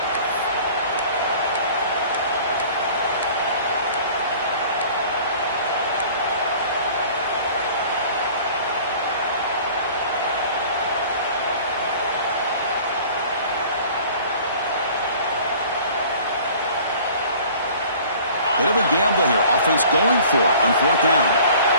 Bit of a gamble here. Offense going for it on fourth down.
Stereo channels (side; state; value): both; inverted; correlation -0.48